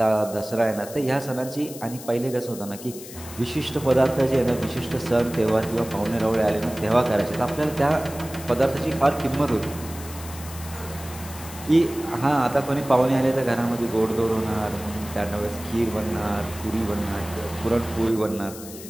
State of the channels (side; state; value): left; noise; hiss, 14 dB below the sound